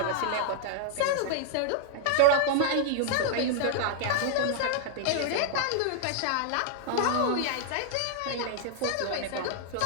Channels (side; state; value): both; different; correlation -0.01